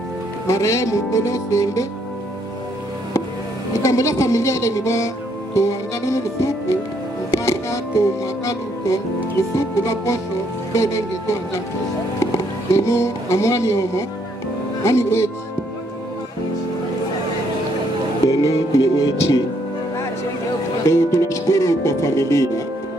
marehemu kono sembe ikambola familia ile nibo to ngano suku mpaka to mwakalu to suku la posho bedenge to ngano dino amwani homo ani kwechi dino ni kwechi. Tunashukuru kwa familia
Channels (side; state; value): both; normal; correlation 0.71